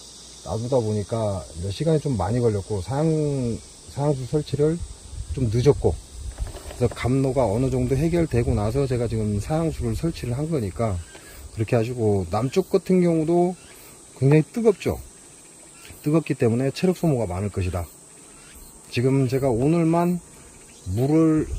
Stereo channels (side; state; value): both; identical; correlation 1.00